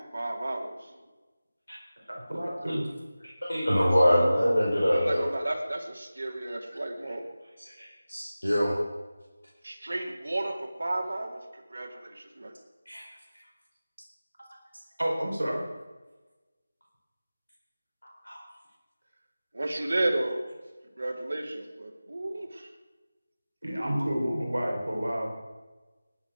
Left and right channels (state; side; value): inverted; both; correlation -0.96